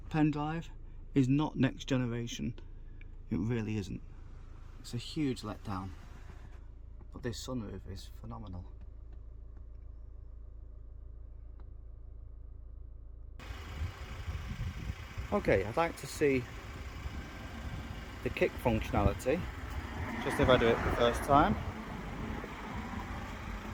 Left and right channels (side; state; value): both; identical; correlation 1.00